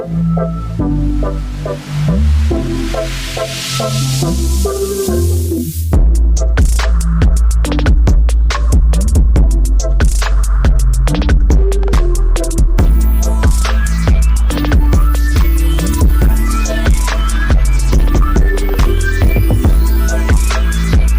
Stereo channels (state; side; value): identical; both; correlation 1.00